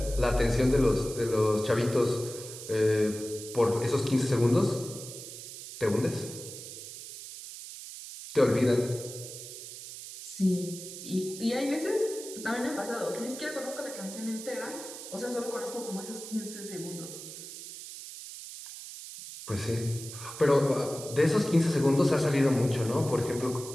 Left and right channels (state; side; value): noise; right; hiss, 12 dB below the sound